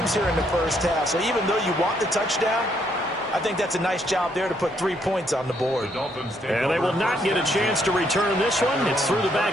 here in the first half. So even though you want the touchdown, I think that's a nice job there to put 3 points on the board. And they will not get a chance to return this one. It's through the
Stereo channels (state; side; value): normal; both; correlation 0.72